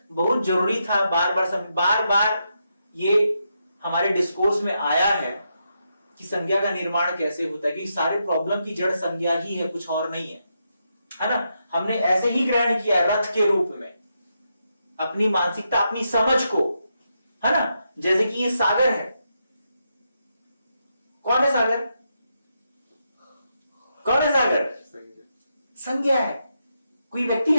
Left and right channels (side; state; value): both; inverted; correlation -0.83